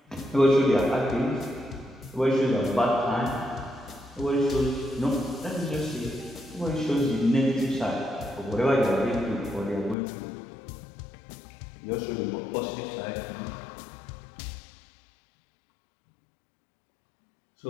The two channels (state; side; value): drops out; right; at 10.0 s